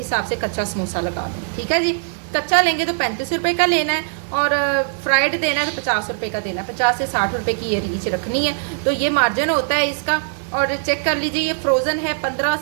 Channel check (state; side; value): silent; left; digital silence